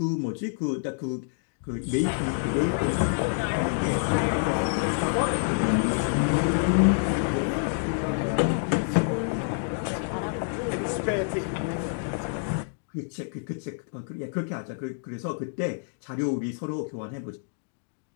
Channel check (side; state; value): right; silent; digital silence